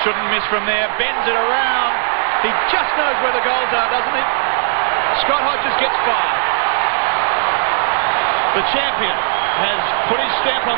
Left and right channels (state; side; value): silent; left; 66 dB below the other